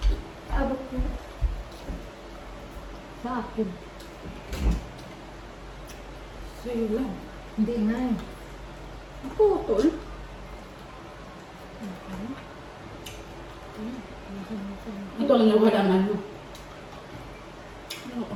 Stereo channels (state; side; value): identical; both; correlation 1.00